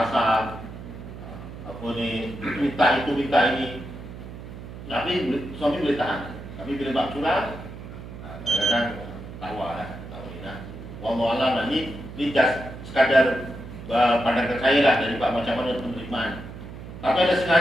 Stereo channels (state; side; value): noise; right; hum, 12 dB below the sound